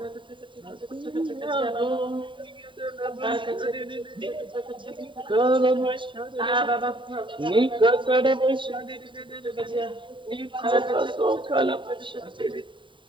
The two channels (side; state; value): left; late; 0.24 ms